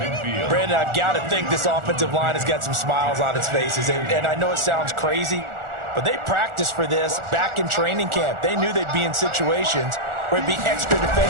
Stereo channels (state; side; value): late; left; 1.4 ms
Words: Brandon, I've got to think this offensive line has got some smiles on its faces. And I know it sounds crazy, but they practiced for this back in training camp. They knew they'd be in situations where there'd be extra